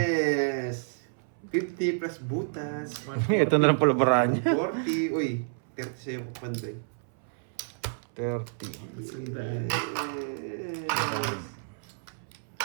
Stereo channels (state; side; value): silent; left; 58 dB below the other